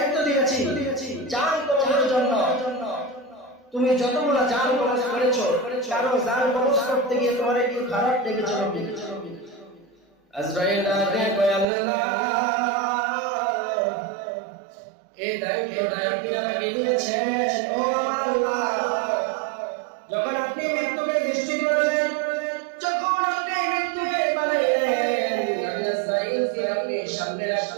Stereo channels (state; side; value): drops out; left; at 11.7 s